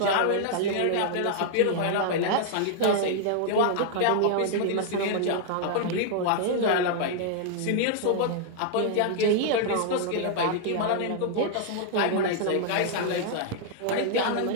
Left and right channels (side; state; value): both; different; correlation -0.01